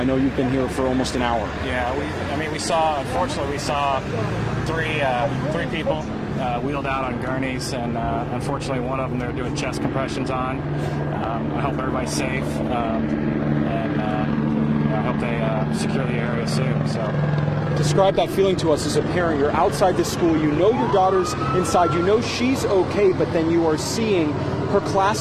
know you've been here for almost an hour. Yeah, unfortunately, we saw three people wheeled out on gurneys, and unfortunately, one of them they're doing chest compressions on. I hope everybody's safe, and I hope they secure the area soon. So. Describe that feeling to us as a parent. You're outside the school, you know your daughter's inside, you know she's okay, but then you are seeing her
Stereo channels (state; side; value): identical; both; correlation 1.00